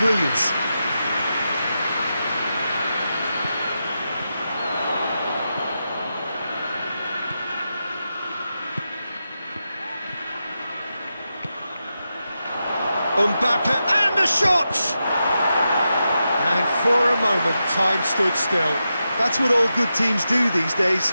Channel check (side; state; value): both; inverted; correlation -0.88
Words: Mbappe, and the shot! And for a moment, time stood still. That's what all good teams do these